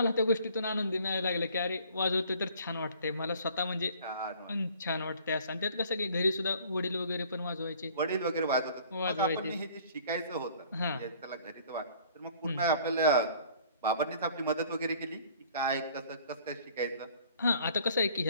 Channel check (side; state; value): both; inverted; correlation -0.54